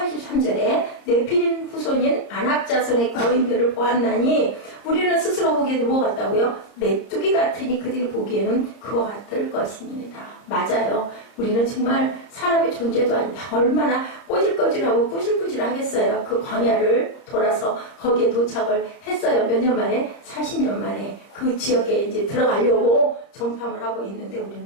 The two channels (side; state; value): right; late; 30 ms